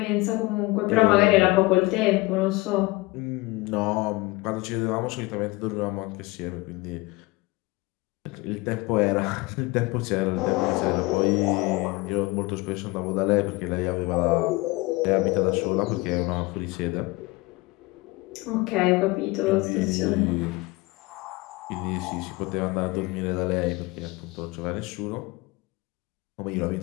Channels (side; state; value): right; quieter; 22.5 dB